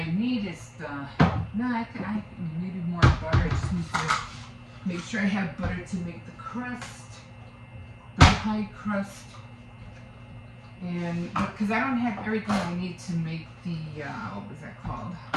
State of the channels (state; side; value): identical; both; correlation 1.00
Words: need is I maybe more butter. I just need to make sure I have butter to make the crust, the pie crust. And because I don't have everything I need to make the what was that called?